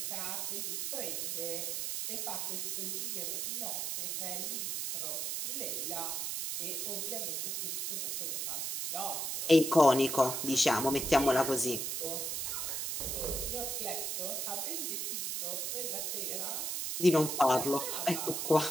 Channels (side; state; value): right; noise; hiss, 2 dB below the sound